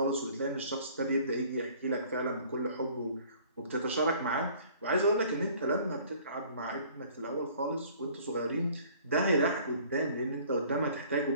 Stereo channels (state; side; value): inverted; both; correlation -0.53